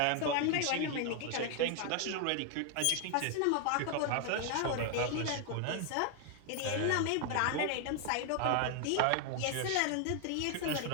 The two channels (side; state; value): both; different; correlation 0.00